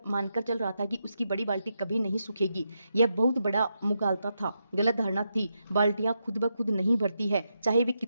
मानकर चल रहा था कि उसकी बड़ी बाल्टी कभी नहीं सूखेगी। यह बहुत बड़ा मुगालता था, गलत धारणा थी। बाल्टियां खुद ब खुद नहीं भरती है, चाहे वे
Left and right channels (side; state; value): both; inverted; correlation -0.84